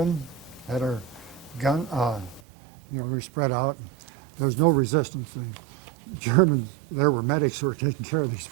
had our gun, we spread out. There was no resistance. The Germans, there were medics who were taking care of these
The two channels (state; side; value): drops out; left; at 2.4 s